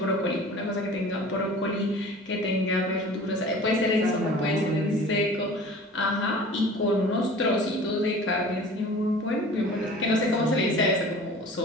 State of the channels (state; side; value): normal; both; correlation 0.43